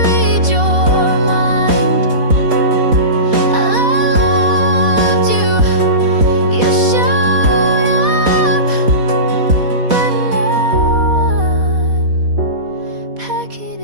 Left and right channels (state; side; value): late; left; 4.2 ms